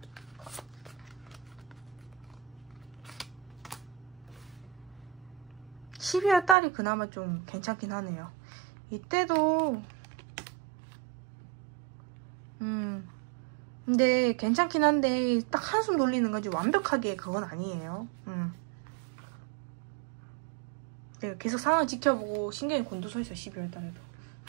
12월달이 그나마 좀 괜찮긴 하네요. 이때도 근데 괜찮긴 한데 딱 한숨 돌리는 거지 완벽하게 그건 아니에요. 내가 계속 상황 지켜보고 신경이 곤두서있어. 12월달에도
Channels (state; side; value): drops out; left; at 6.6 s